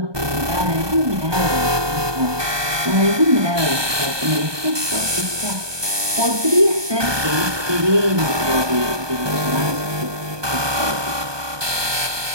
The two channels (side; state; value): left; late; 1.2 ms